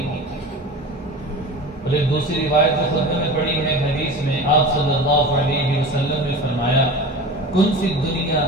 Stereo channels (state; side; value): normal; both; correlation 0.34